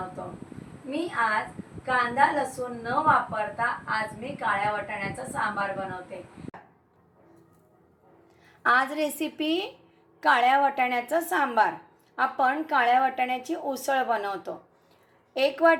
मी आज कांदा लसूण न वापरता आज मी काळ्या वाटाण्याचं सांबार बनवते. आज रेसिपी काळ्या वाटाण्याचं सांबार. आपण काळ्या वाटाण्याची उसळ बनवतो. 1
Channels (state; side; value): identical; both; correlation 1.00